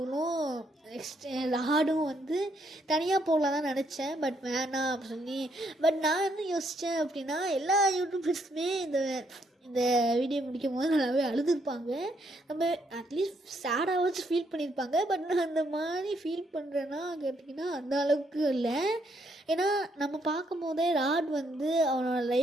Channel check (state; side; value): normal; both; correlation 0.73